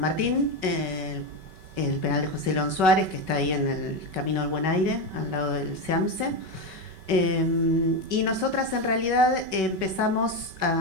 Martín. El penal de José León Suárez, que está ahí en el Camino del Buen Aire, al lado del SEAMSE. Y nosotras en realidad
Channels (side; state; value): left; late; 5.3 ms